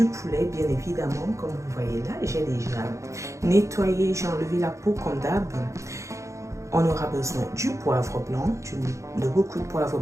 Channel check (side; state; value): left; late; 0.15 ms